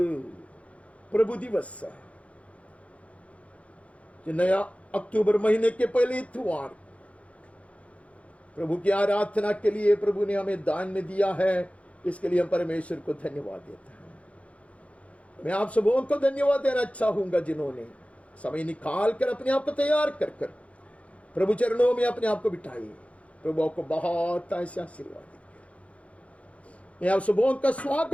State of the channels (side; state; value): right; late; 0.064 ms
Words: प्रभु दिवस है जो नया अक्टूबर महीने के पहले इतवार प्रभु की आराधना के लिए प्रभु ने हमें दान में दिया है। इसके लिए हम परमेश्वर को धन्यवाद देते हैं। मैं आप सबों को धन्यवाद देना चाहूंगा जिन्होंने समय निकाल कर अपने आप को तैयार कर कर प्रभु चरणों में अपने आप को बिठाइए। प्रभु आपको बहुत ऐसा आशीर्वाद दे। मैं आप सबों का